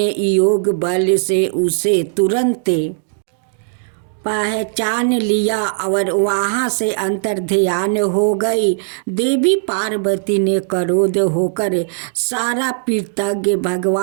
योग बल से उसे तुरंत पहचान लिया और वहाँ से अंतर्ध्यान हो गई। देवी पार्वती ने क्रोध होकर सारा कृतज्ञ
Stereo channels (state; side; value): silent; left; digital silence